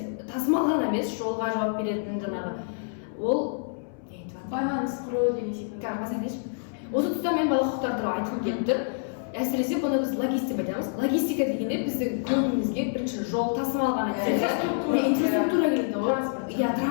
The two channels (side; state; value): right; silent; 60 dB below the other